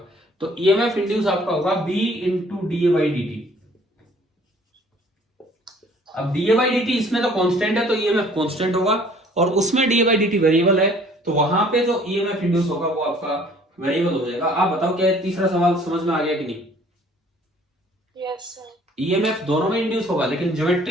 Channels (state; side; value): normal; both; correlation 0.55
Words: तो ईएमएफ इंड्यूस आपका होगा b into d a by d t. अब डीए बाई डी टी इसमें तो कांस्टेंट है, तो ईएमएफ कांस्टेंट होगा, और उसमें d a by d T variable है, तो वहां पे जो ईएमएफ इंड्यूस होगा वो आपका वेरिएबल हो जाएगा। आप बताओ क्या तीसरा सवाल समझ में आ गया कि नहीं? Yes sir. ईएमएफ दोनों में इंड्यूस होगा, लेकिन